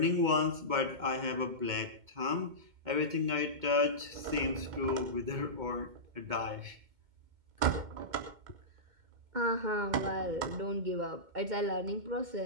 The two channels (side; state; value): left; late; 2.2 ms